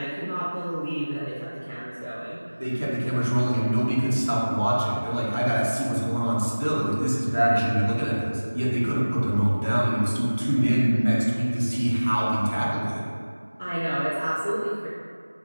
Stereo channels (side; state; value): both; inverted; correlation -1.00